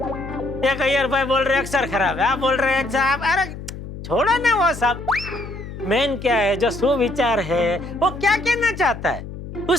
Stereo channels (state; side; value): noise; left; hum, 11 dB below the sound